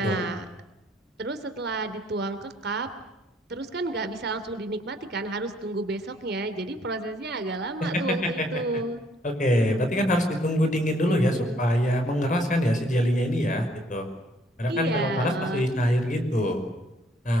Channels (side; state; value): both; normal; correlation 0.65